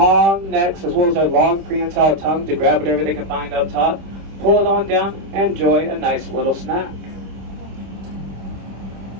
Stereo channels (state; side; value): late; left; 26 ms